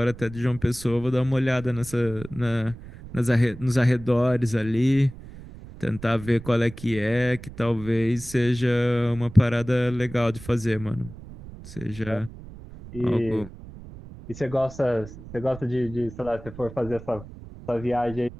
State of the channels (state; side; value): noise; right; rumble, 15 dB below the sound